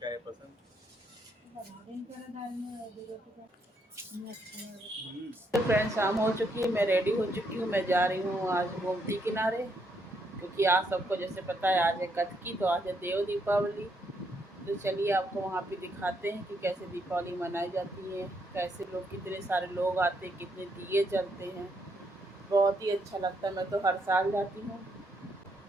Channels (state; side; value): normal; both; correlation 0.75